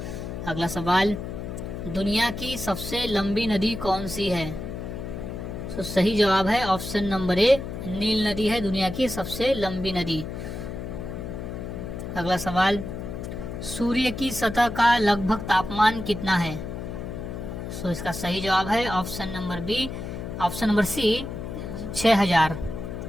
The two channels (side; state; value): left; noise; hum, 7 dB below the sound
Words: अगला सवाल, दुनिया की सबसे लंबी नदी कौन सी है? तो सही जवाब है ऑप्शन नंबर ए नील नदी है दुनिया की सबसे लंबी नदी। अगला सवाल, सूर्य की सतह का लगभग तापमान कितना है? सो इसका सही जवाब है option number C 6000।